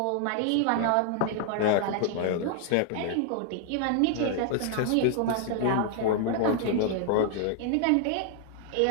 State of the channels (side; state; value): both; different; correlation 0.00